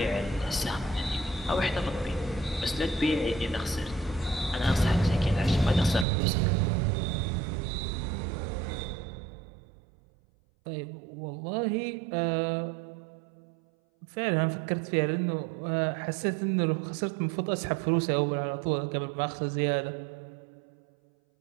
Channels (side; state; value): left; drops out; at 6.1 s